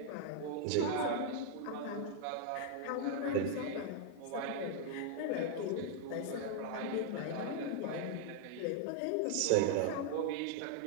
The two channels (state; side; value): different; both; correlation -0.01